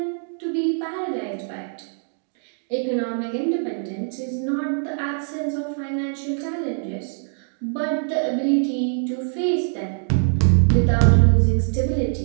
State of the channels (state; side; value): silent; left; digital silence